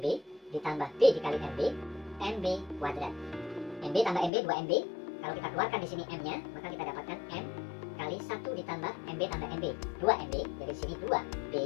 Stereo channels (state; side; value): drops out; right; at 4.3 s